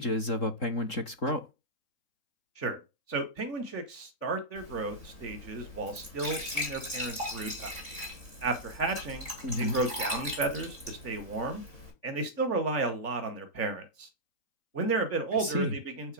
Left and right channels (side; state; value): right; late; 3.5 ms